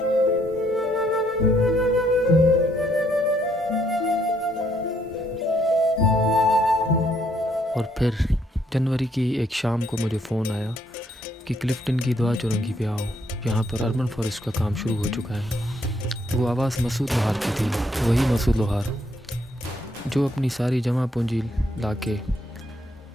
और फिर जनवरी की एक शाम को मुझे फ़ोन आया कि क्लिफ्टन की दुआ चौरंगी पे आओ, यहाँ पर अर्बन फॉरेस्ट का काम शुरू हो चुका है। वो आवाज़ मसूद लोहार की थी, वही मसूद लोहार जो अपनी सारी जमा पूंजी लाके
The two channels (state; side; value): normal; both; correlation 0.70